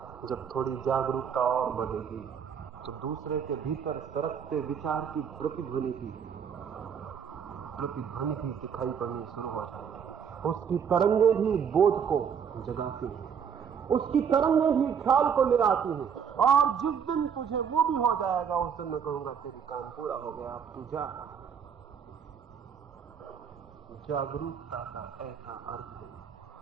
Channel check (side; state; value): left; quieter; 7.4 dB